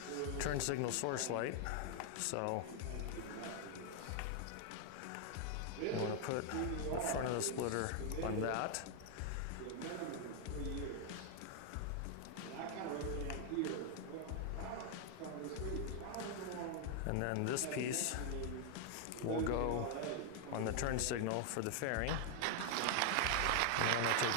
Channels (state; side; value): different; both; correlation 0.00